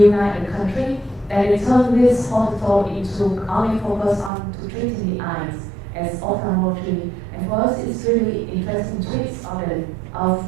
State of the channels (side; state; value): left; drops out; at 4.3 s